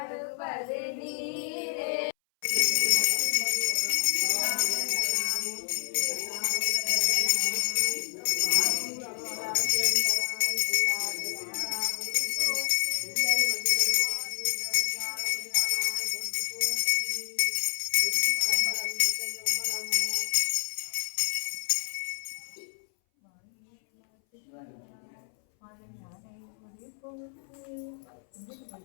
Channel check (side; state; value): right; silent; 59 dB below the other